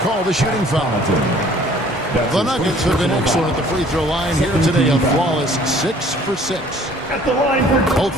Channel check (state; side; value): normal; both; correlation 0.54